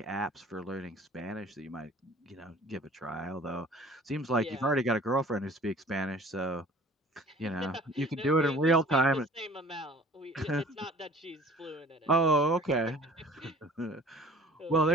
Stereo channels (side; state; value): both; normal; correlation 0.48